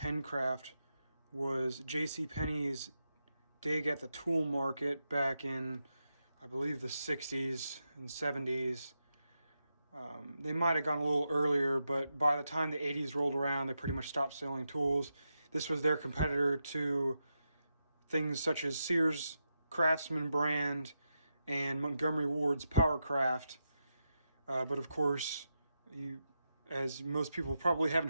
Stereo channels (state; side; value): inverted; both; correlation -0.87